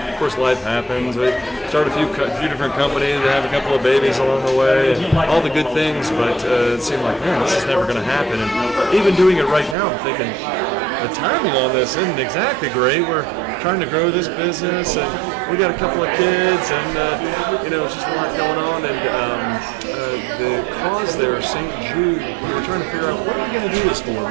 of course, life happens. start a few different companies, have a couple of babies along the way, and all the good things, but it seemed like, man, this is never going to happen. And even doing it right now, I'm thinking, the timing on this isn't exactly great. We're trying to grow this business, and we got a couple of kids, and it's just a lot going on. And the cause there, St. Jude, we were trying to figure out what are we going to do this for,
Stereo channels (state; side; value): drops out; left; at 9.8 s